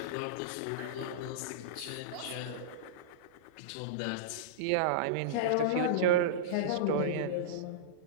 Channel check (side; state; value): both; different; correlation -0.04